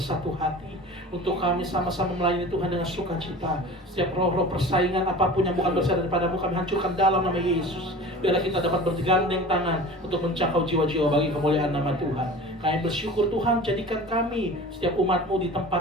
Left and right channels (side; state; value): both; normal; correlation 0.39